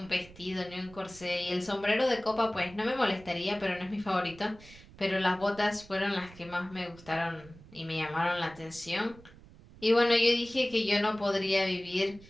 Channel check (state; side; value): noise; right; rumble, 21 dB below the sound